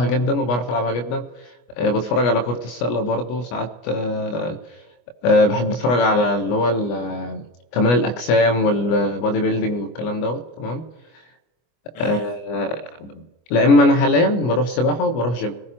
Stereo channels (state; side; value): late; right; 25 ms